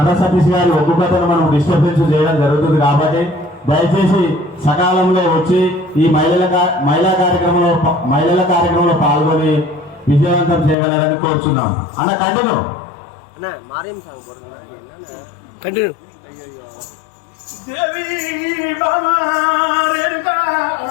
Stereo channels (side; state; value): right; drops out; at 10.8 s